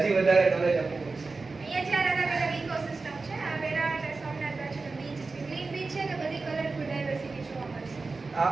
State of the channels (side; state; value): left; quieter; 3.9 dB